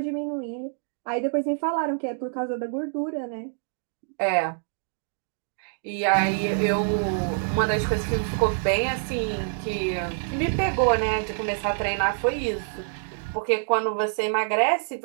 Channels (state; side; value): silent; left; digital silence